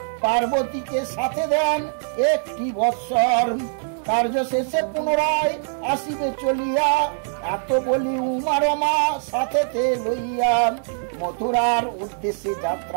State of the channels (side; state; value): left; silent; digital silence